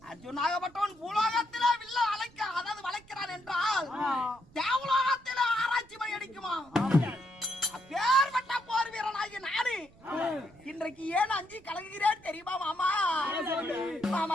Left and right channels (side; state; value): right; noise; rumble, 26 dB below the sound